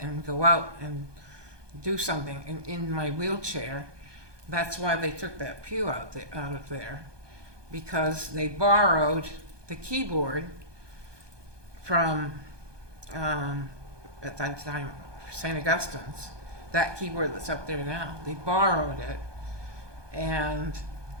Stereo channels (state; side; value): late; left; 1.2 ms